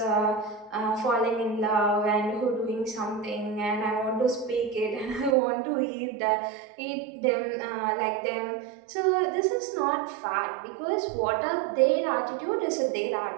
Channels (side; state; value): left; drops out; at 5.4 s